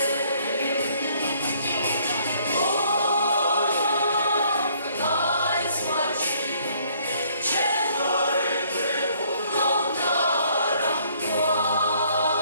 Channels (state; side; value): inverted; both; correlation -0.63